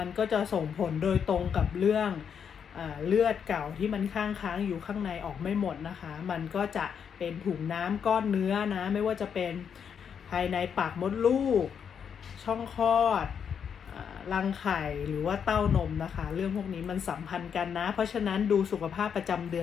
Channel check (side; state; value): right; quieter; 7.4 dB